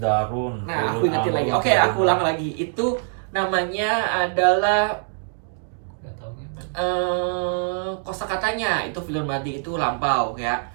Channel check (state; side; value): silent; left; digital silence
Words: Nah, aku fi'lun ingetin lagi. amrun, Oke, aku ulang lagi. Itu namanya adalah Nggak tahu kan? kosakatanya. Itu fi'lun madi itu lampau ya.